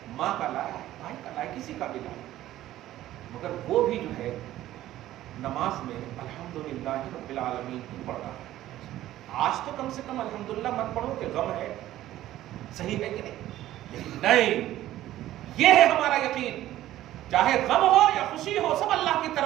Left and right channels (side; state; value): left; quieter; 14.1 dB